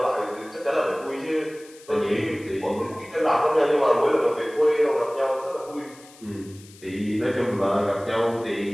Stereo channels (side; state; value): left; noise; hiss, 23 dB below the sound